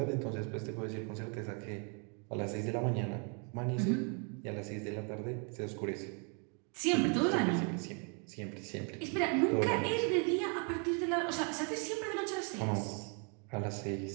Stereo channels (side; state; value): left; quieter; 38.0 dB